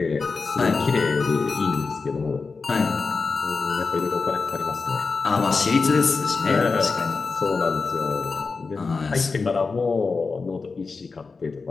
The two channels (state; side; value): quieter; right; 4.4 dB